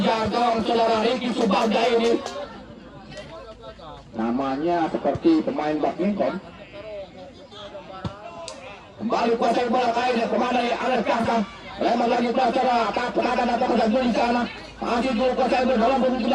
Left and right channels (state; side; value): identical; both; correlation 1.00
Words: gawang saudara Ricky Subagda ini. Namanya seperti pemain badminton. Kembali kuasai bola kali ini pemain dari anak Gangsa. Lebar lagi saudara tak penatan atau kedatangan di sana. Masih Jul kuasai bola dalam posisi